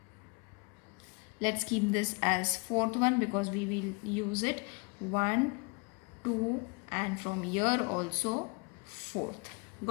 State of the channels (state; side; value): quieter; right; 32.2 dB